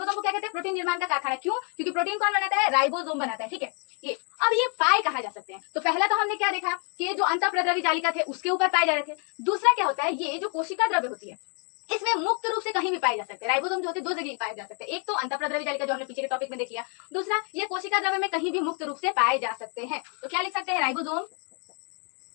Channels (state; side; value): quieter; right; 39.3 dB